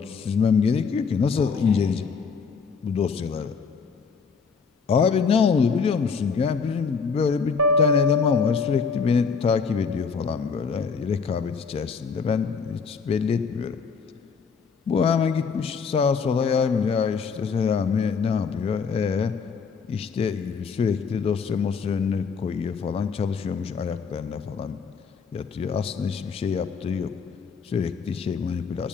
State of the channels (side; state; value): right; quieter; 5.5 dB